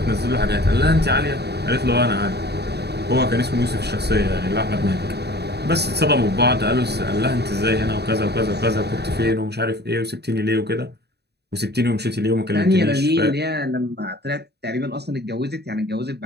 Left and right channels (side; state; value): left; late; 0.48 ms